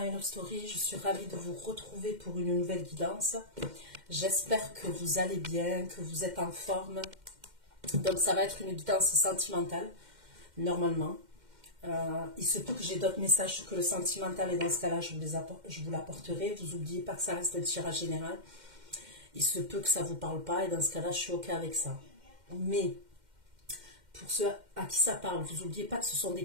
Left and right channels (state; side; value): late; left; 2.1 ms